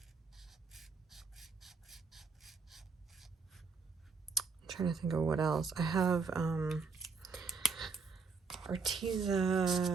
trying to think of what else. I have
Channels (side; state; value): left; quieter; 4.7 dB